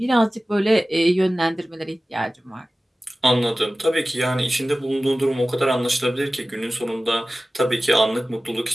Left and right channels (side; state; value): both; normal; correlation 0.96